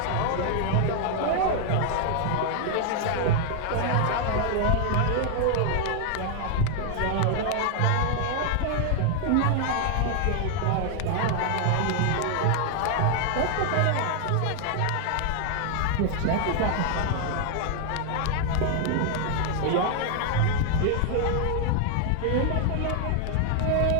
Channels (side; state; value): both; different; correlation 0.00